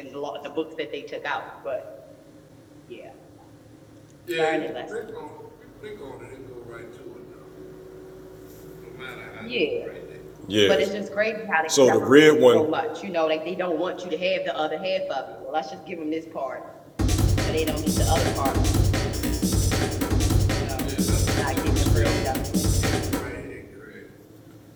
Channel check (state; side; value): identical; both; correlation 1.00